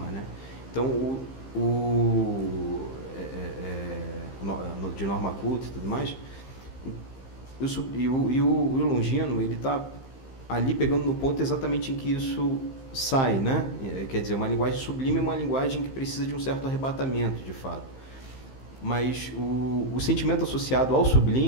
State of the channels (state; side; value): late; right; 15 ms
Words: né? Então, de norma culta e tudo mais, e o Longino, ele está ali pegando no ponto exatamente em que isso sai, né? Quer dizer, uma linguagem sublime é uma linguagem que precisa de um certo arrebatamento, de fato. Mas o sentimento associado ao